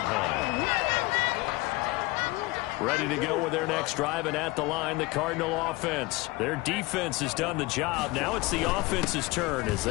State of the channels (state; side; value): quieter; right; 21.9 dB